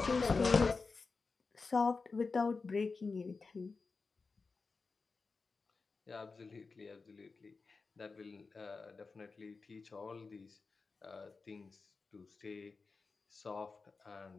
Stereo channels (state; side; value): quieter; right; 4.3 dB